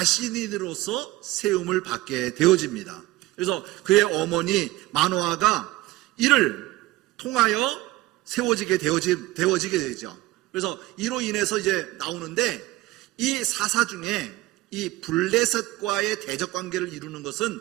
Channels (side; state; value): left; quieter; 17.9 dB